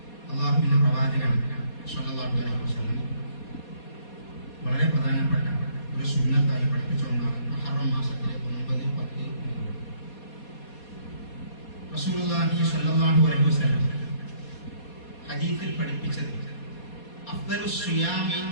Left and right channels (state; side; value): late; right; 4.2 ms